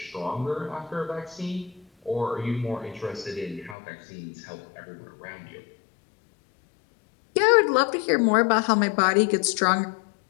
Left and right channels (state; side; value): drops out; right; at 3.8 s